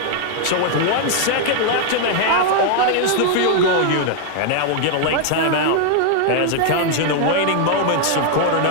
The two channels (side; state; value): both; different; correlation 0.00